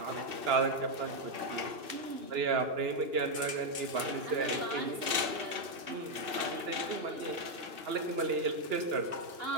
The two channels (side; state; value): left; late; 2.6 ms